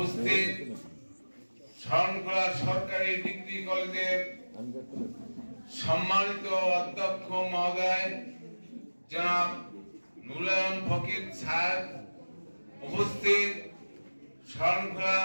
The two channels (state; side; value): inverted; both; correlation -1.00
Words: শরণখোলা সরকারি ডিগ্রি কলেজের সম্মানিত অধ্যক্ষ মহোদয় জনাব নুরুল ফকির স্যার, উপস্থিত শরণখোলা